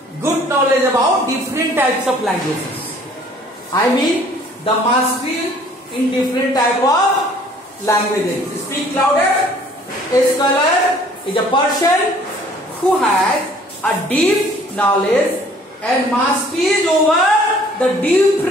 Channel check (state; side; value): normal; both; correlation 0.55